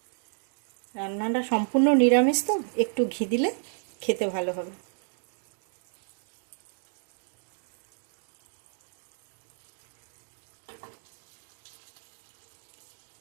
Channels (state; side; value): silent; left; digital silence